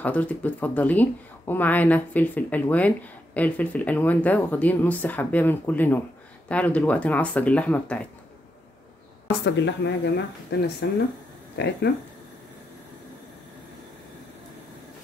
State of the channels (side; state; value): both; normal; correlation 0.82